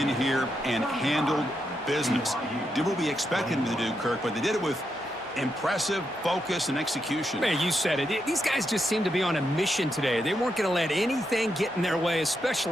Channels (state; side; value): normal; both; correlation 0.83